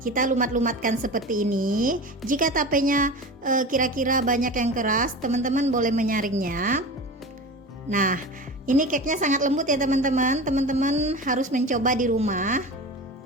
lumat-lumatkan seperti ini. Jika tapenya kira-kira banyak yang keras, teman-teman boleh menyaringnya. Nah, ini cake-nya sangat lembut ya teman-teman. Teman-teman harus mencoba di rumah.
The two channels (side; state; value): both; normal; correlation 0.31